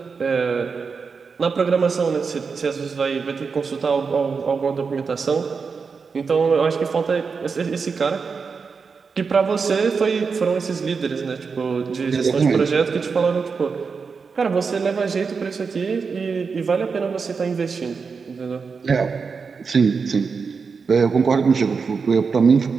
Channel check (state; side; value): quieter; left; 5.2 dB